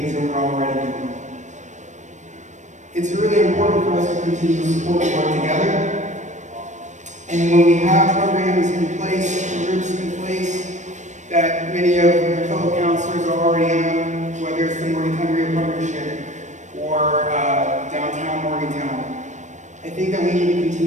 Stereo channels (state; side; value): late; left; 0.35 ms